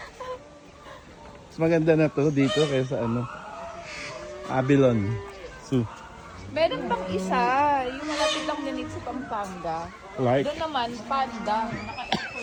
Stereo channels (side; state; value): both; identical; correlation 1.00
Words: Mas maganda na to dito kaysa ano. Abilon Zoo. Meron pang isa, yung malapit lang din sa Pampanga. Like? Doon naman, panda.